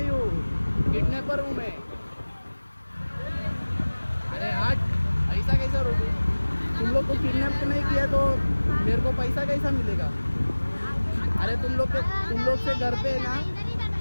हूँ. किडनैपर हूँ मैं. अरे हट. ऐसा कैसा रोकूं. तुम लोग को किडनैप नहीं किया तो मेरे को पैसा कैसा मिलेगा. अरे तुम लोग से घर पे है ना.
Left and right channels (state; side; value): inverted; both; correlation -1.00